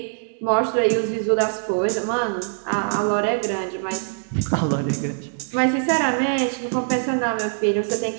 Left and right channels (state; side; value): silent; left; digital silence